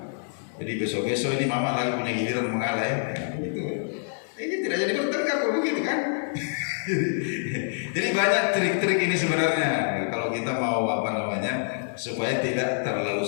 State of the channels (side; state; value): right; silent; 61 dB below the other